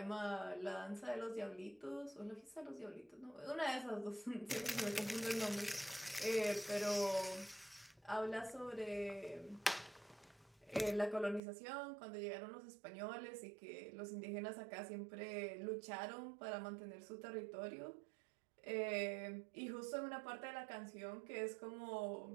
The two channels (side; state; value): left; drops out; at 11.4 s